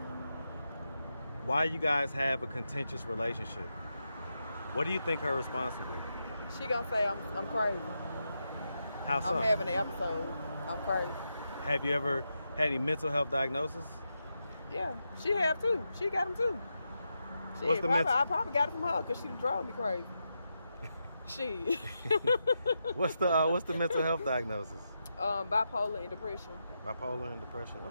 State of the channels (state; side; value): inverted; both; correlation -0.86